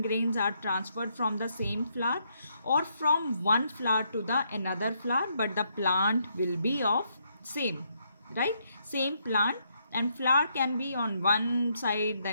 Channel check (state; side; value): inverted; both; correlation -0.75